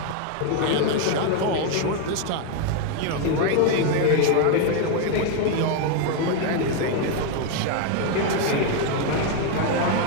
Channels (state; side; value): different; both; correlation 0.01